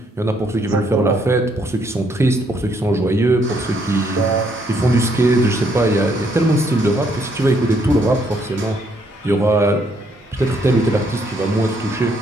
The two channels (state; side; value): normal; both; correlation 0.70